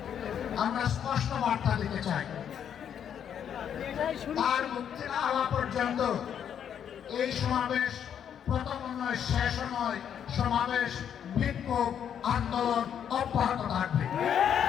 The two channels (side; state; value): right; quieter; 8.8 dB